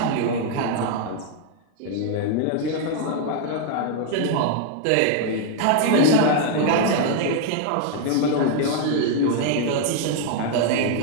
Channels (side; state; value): both; different; correlation 0.00